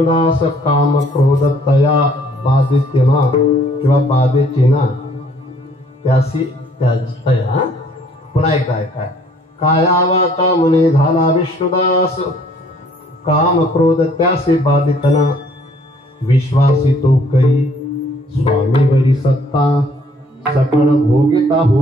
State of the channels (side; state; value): both; normal; correlation 0.60